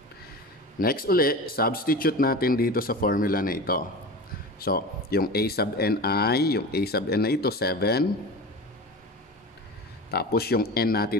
Next uli, substitute natin dito sa formula na ito. So, yung a sub n na ito, 7. Tapos yung n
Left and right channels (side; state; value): both; normal; correlation 0.31